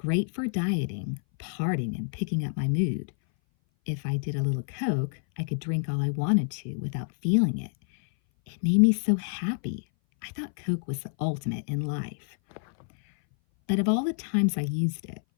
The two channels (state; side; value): silent; right; 58 dB below the other